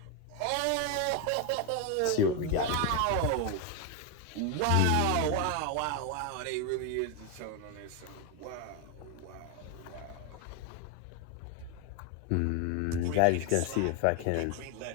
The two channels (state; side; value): different; both; correlation 0.01